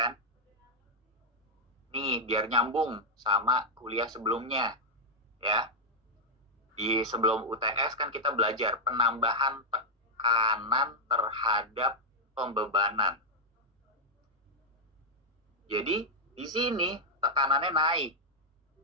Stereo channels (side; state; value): both; normal; correlation -0.03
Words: Nih, biar nyambung sama kuliah sebelumnya, ya. Di sebelum UTS kan kita belajar penambahan tekanan terhadap pembebanan. Jadi di sini tekanannya naik.